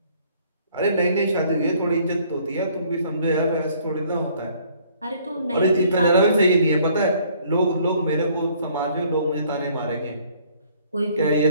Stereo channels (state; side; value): inverted; both; correlation -0.61